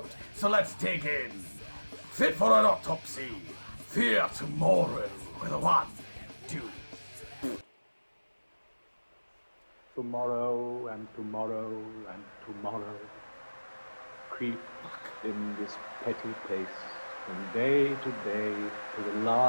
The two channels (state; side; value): inverted; both; correlation -1.00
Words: So let's dig in. Fit for an autopsy. Fear tomorrow with a 1, 2. Tomorrow and tomorrow and tomorrow creep in this petty pace from day to day to the